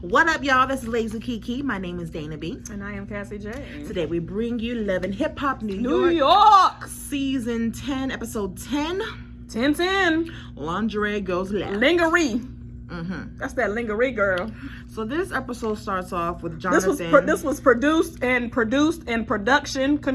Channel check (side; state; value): both; identical; correlation 1.00